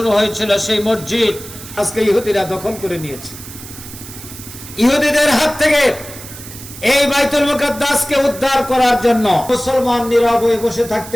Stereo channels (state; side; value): noise; right; hiss, 14 dB below the sound